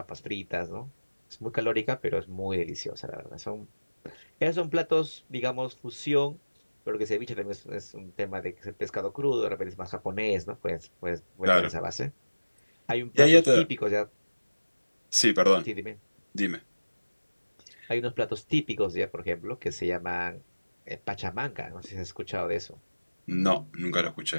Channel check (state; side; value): inverted; both; correlation -1.00